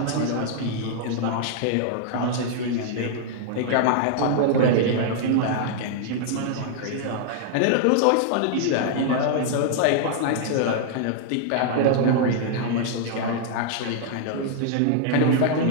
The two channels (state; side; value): different; both; correlation -0.01